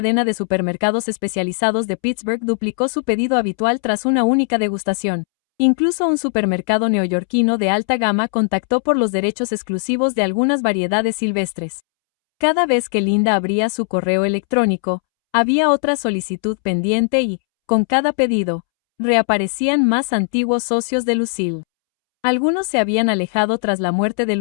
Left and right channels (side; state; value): right; silent; 67 dB below the other